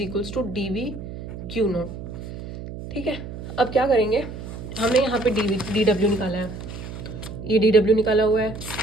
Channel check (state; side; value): noise; right; hum, 10 dB below the sound